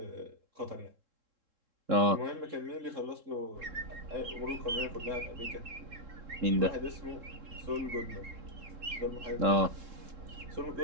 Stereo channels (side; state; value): left; late; 3.7 ms